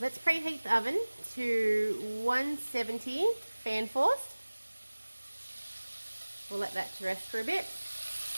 let's preheat the oven to 170 fan forced. We'll let that to rest for a bit.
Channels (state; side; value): inverted; both; correlation -1.00